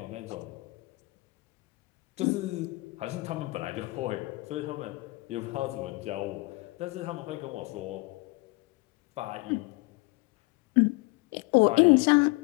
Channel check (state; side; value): quieter; right; 24.2 dB